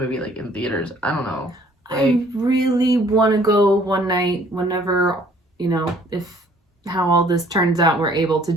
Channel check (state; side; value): normal; both; correlation 0.58